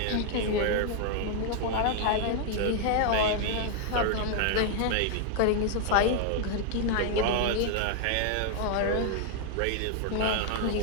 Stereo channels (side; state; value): both; different; correlation 0.00